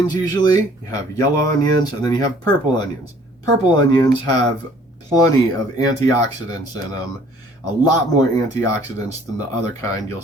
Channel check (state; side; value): normal; both; correlation 0.57